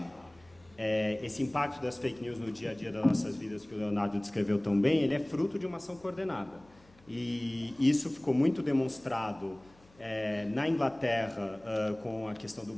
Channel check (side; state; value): left; noise; hum, 28 dB below the sound